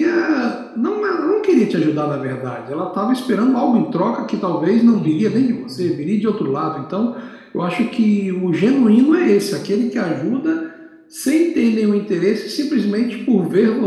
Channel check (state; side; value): identical; both; correlation 1.00